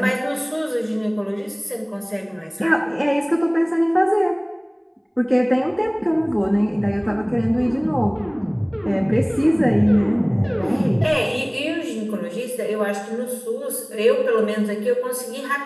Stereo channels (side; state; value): both; identical; correlation 1.00